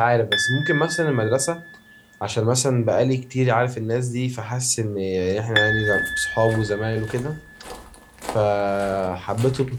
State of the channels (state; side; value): identical; both; correlation 1.00